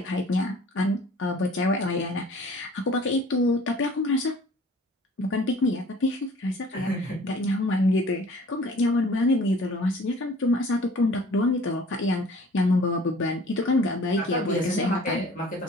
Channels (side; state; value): both; normal; correlation 0.50